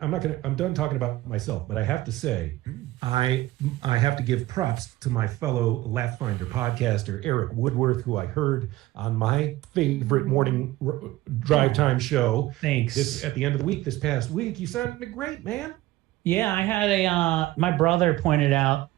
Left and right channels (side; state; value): left; quieter; 17.1 dB